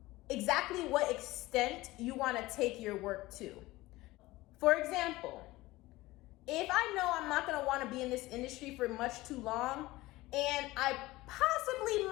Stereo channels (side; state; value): right; quieter; 19.0 dB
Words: exactly what extent you want to take your work to. For example, if I know I'm not going to want to be in this industry for much too long, and I possibly